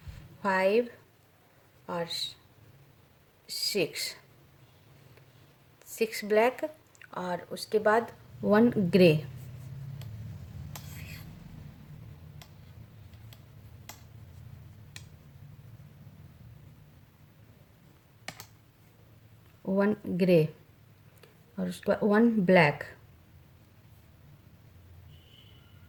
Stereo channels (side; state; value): both; identical; correlation 1.00